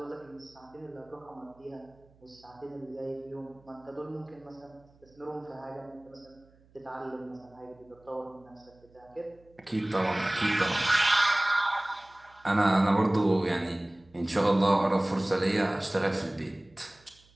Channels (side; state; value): right; noise; hum, 29 dB below the sound